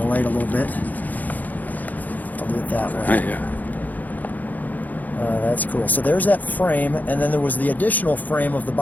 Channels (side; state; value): right; late; 0.081 ms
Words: light a little bit. I'll do it that way. Yeah. That's cool. So there's that frame, and then there was the additional frame of the